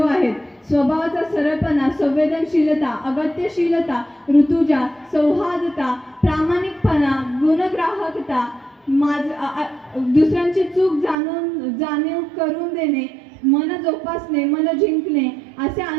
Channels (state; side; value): drops out; left; at 11.2 s